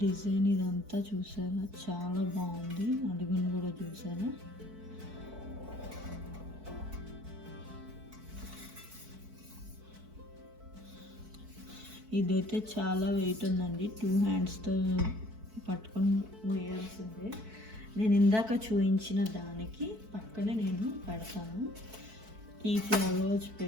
డిజైన్ ఇదంతా చూసారా, చాలా బాగుంది. అడుగును కూడా చూసారా. ఇదైతే చాలా వెయిట్ ఉందండి. 2 handsతో పట్టుకొని మోయాల్సిందే. నేను ఇందాక చూపించిన దానికి పక్కనే నేను పెడతాను. ఈ ఫ్లవర్స్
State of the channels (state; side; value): late; left; 4.6 ms